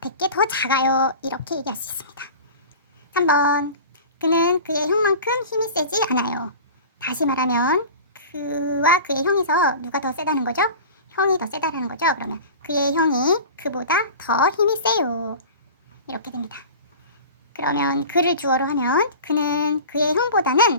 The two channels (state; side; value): inverted; both; correlation -0.37